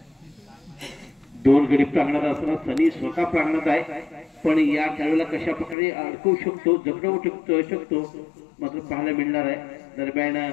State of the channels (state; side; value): drops out; right; at 5.8 s